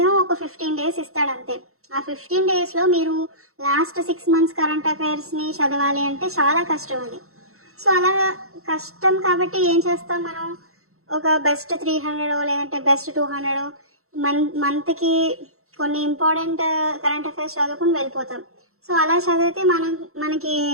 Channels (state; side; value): late; left; 0.63 ms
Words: ఒక 15 days ఇస్తాడు అంతే. ఆ 15 daysలో మీరు లాస్ట్ 6 months కరెంట్ అఫైర్స్ని చదవాలి అంటే చాలా కష్టం అది. సో అలా కష్టం కాబట్టి ఏం చేస్తాం మనం, ఒక బెస్ట్ 300 లేదంటే బెస్ట్ 200 మంత్కి కొన్ని ఇంపార్టెంట్ కరెంట్ అఫైర్స్ చదువుకుని వెళ్ళిపోతాం. సో అలా చదివితే మనకి